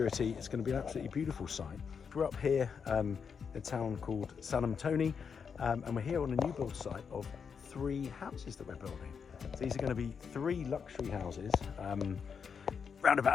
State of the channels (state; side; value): quieter; right; 6.4 dB